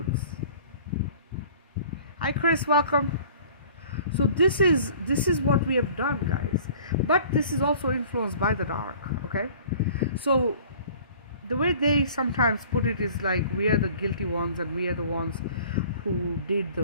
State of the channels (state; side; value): inverted; both; correlation -0.49